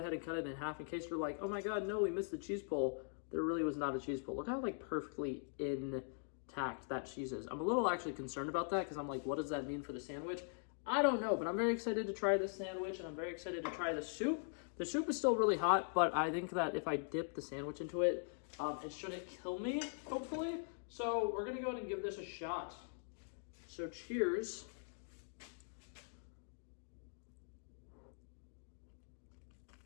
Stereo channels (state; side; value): silent; right; digital silence